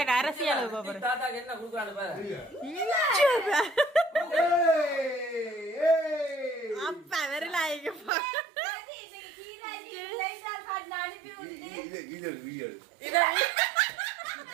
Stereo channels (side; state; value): left; drops out; at 8.1 s